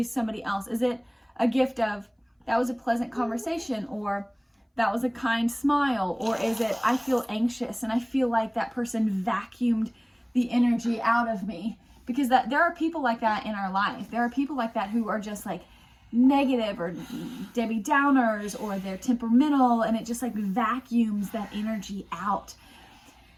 somebody else? Is it a gift of, that was a pleasant conversation, or that was a kind smile, or is it, I feel anxious and I feel like that person vacuumed the energy out of me? Because there are people like that in our life. There are people like that who are just like negative or Debbie Downers, or they're temperamental, and it just like vacuums that energy out.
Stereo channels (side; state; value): both; identical; correlation 1.00